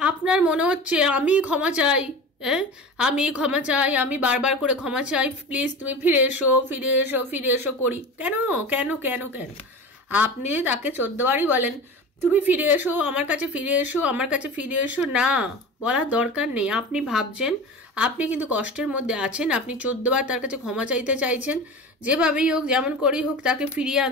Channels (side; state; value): both; normal; correlation 0.32